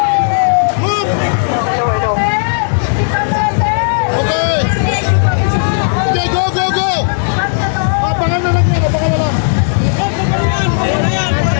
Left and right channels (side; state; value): right; silent; digital silence